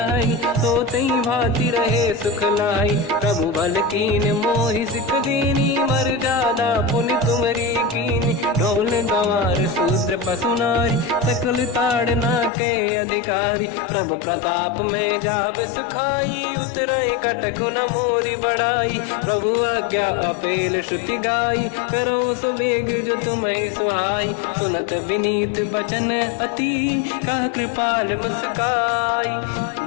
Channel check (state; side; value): drops out; right; at 12.5 s